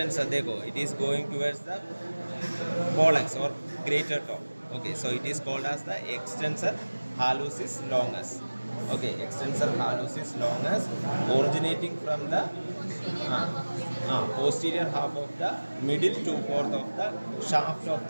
Dekho, it is going towards the pollex or greater toe. Okay, so it is called as the extensor hallucis longus. Okay, extensor hallucis longus originating from the posterior half of the middle two-fourth of the shaft of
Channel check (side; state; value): both; inverted; correlation -1.00